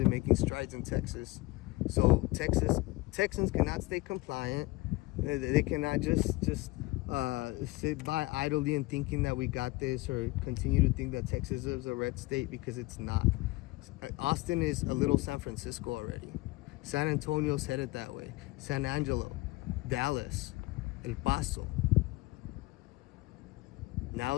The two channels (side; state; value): right; quieter; 21.1 dB